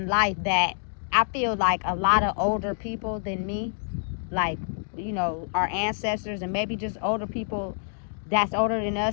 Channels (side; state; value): right; silent; digital silence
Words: life that I feel like a lot of older people than me, like our ancestors and maybe just older people that's older than